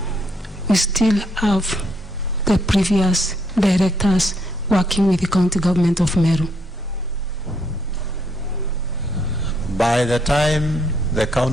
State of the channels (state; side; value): normal; both; correlation 0.72